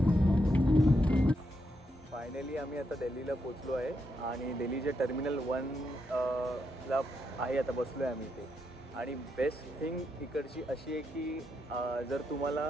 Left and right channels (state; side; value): normal; both; correlation 0.81